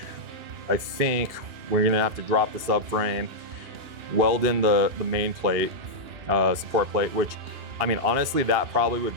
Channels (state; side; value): late; left; 2.8 ms